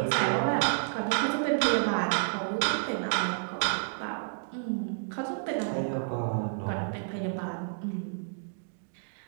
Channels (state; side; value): silent; left; digital silence